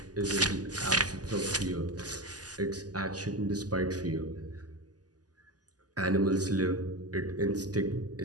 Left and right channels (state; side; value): late; left; 0.68 ms